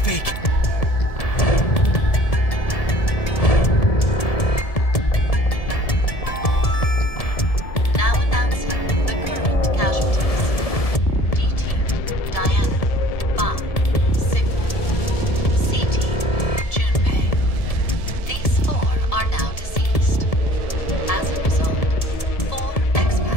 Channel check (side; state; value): right; late; 1.7 ms